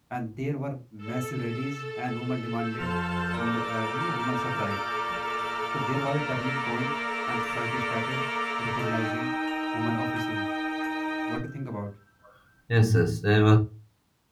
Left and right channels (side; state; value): both; identical; correlation 1.00